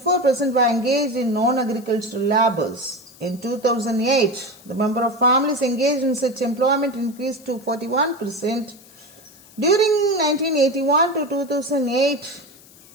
were engaged in non-agricultural labors. In 2008, the number of families engaged in such employment increased to 41%. During 1981 to 2008,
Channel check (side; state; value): left; noise; hiss, 24 dB below the sound